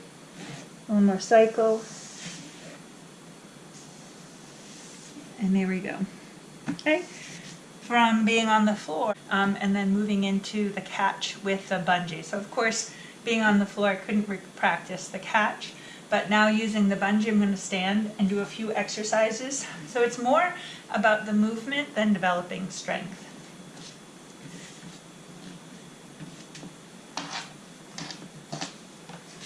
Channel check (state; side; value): identical; both; correlation 1.00